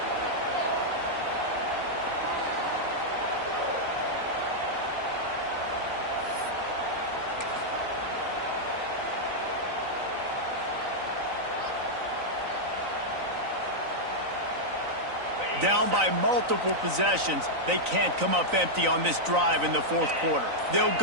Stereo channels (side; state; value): left; late; 3.9 ms